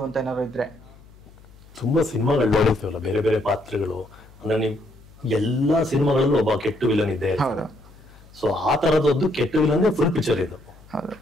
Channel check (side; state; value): left; noise; hum, 24 dB below the sound